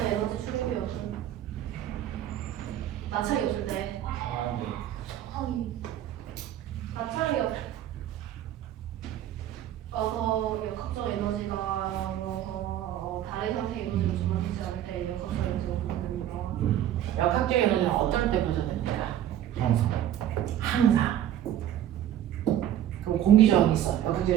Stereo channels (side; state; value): left; quieter; 11.5 dB